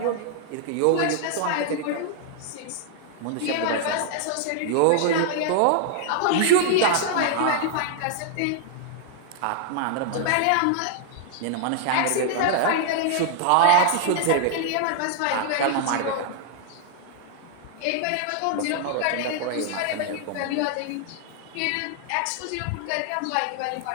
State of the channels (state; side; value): different; both; correlation 0.00